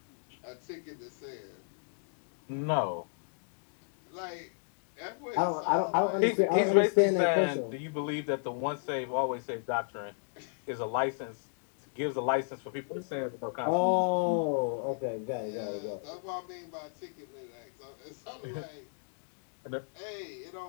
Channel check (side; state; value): right; silent; digital silence